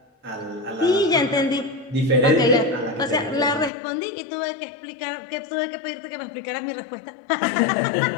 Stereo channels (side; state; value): right; drops out; at 3.7 s